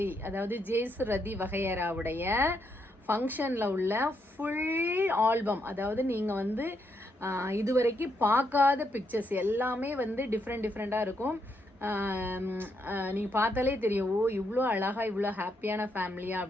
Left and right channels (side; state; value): both; normal; correlation 0.78